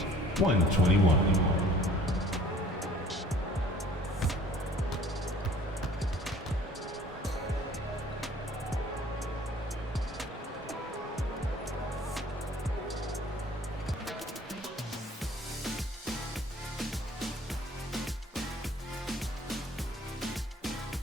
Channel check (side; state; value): both; normal; correlation 0.52